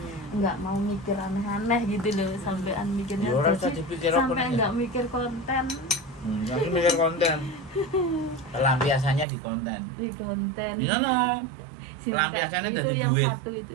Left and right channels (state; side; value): drops out; left; at 9.2 s